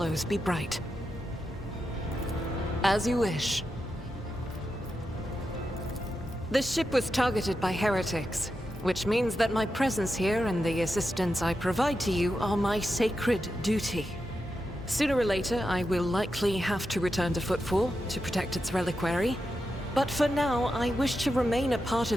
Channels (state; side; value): normal; both; correlation 0.88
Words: be bright. As you wish. The ship was targeted by heretics, which means that my presence here and the assistance I provide to you are my sacred duty. Sooner or later, I will likely have to return to Footfall to protect its reliquary, but for now, I wish to remain a part